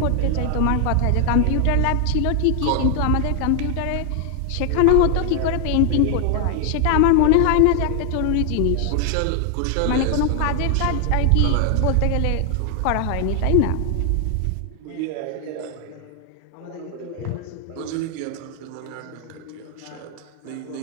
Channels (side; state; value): both; different; correlation 0.00